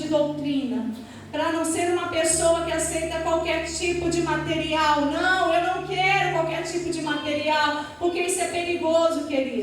doutrina. Para não ser uma pessoa que aceita qualquer tipo de material. Não, eu não quero qualquer tipo de material, porque isso é perigoso,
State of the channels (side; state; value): both; identical; correlation 1.00